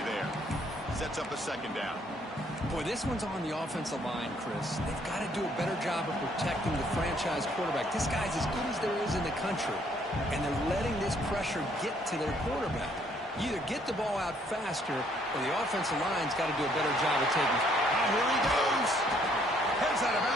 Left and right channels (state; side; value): normal; both; correlation 0.66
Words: there. Sets up a second down. Boy, this one's on the offensive line, Chris. They've got to do a better job of protecting the franchise quarterback. This guy's as good as there is in the country, and they're letting this pressure get to their quarterback. You either get the ball out faster, or the offensive line's got to do a better job of taking it. Oh, here he goes. Heads out of